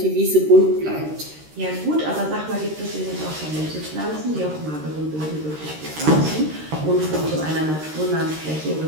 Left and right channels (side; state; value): left; late; 13 ms